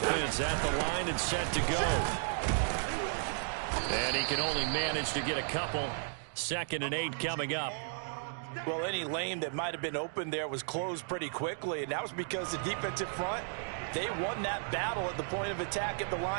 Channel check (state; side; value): silent; left; digital silence